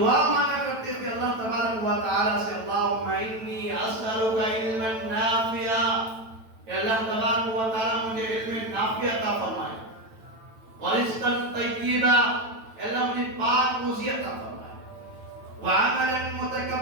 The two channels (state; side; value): late; left; 9.0 ms